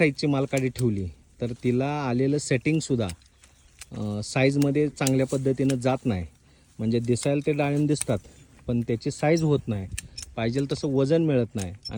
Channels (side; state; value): both; identical; correlation 1.00